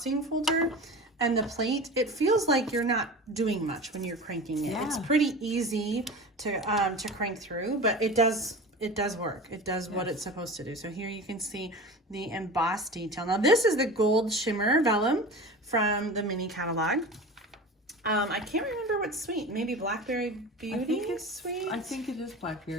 folder and the plate, it feels like you're not doing much when you're cranking it. Yeah. It's pretty easy to crank through, but it does work. It does what it's supposed to do. So here you can see the embossed detail. Now this is the gold shimmer vellum from the mini catalog. I can't remember what sweet. Maybe Blackberry Beauty is sweet. I think it is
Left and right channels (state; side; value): normal; both; correlation 0.33